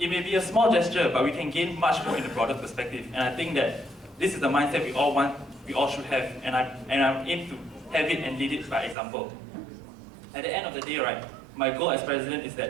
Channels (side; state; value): left; drops out; at 9.0 s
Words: may be a small gesture, but we can gain much more in the broader perspective. And I think that this is the mindset we all should have, and I aim to have it and lead it by example. At the end of the day, right, my goal as president is